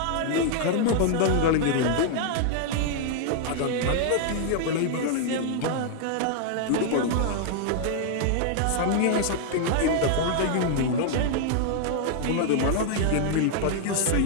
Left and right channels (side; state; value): both; different; correlation 0.00